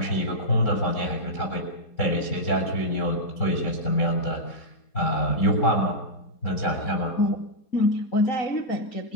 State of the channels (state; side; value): late; right; 4.3 ms